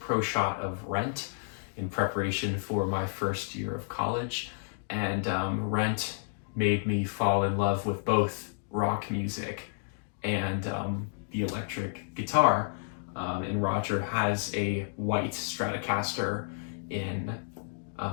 shot of Rent in preparation for my first year of college, and Rent made me fall in love with both rock music and the electric guitar. And Roger has a white Stratocaster in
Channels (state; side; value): silent; right; digital silence